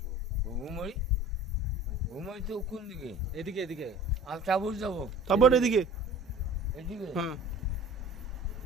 ঘুমই ঘুমই তো কোন দিকে এদিকে এদিকে আমি চাবুর যাবো তারপর এদিকে এদিকে হ্যাঁ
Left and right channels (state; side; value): normal; both; correlation 0.44